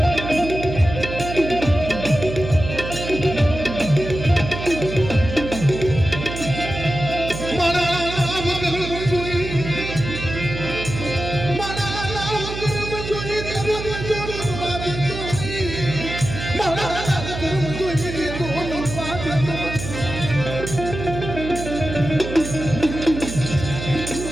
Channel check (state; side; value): noise; right; hum, 7 dB below the sound